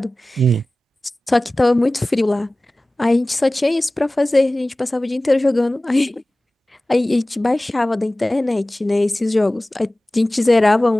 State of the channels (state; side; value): normal; both; correlation 0.98